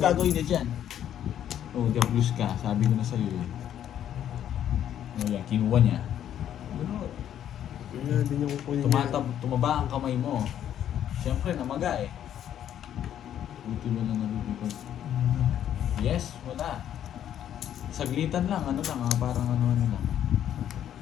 gagawin niya dyan? Oh, blues ka. Sabi ko na sa'yo eh. Oh, yan, kinuha niya. Wala din yung kukunin niya. Tumaba ang kamay mo. Siyempre, namaga eh. Buti mo na nalulipad. Yes, wala. Saglitan lang, ano lang, parang ano lang.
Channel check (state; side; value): quieter; right; 10.4 dB